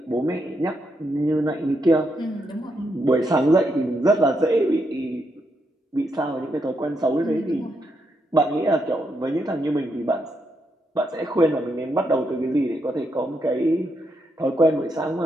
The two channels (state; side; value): normal; both; correlation 0.80